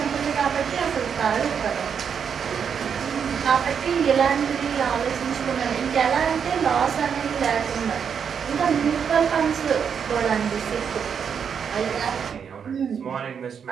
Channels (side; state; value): left; quieter; 7.1 dB